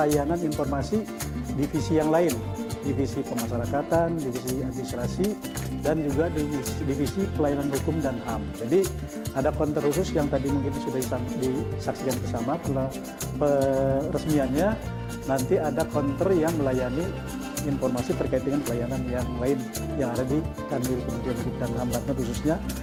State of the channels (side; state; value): both; identical; correlation 1.00